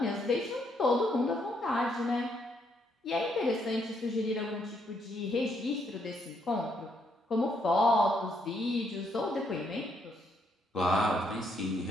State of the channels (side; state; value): both; normal; correlation 0.74